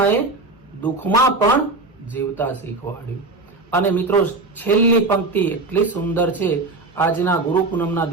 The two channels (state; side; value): quieter; left; 3.3 dB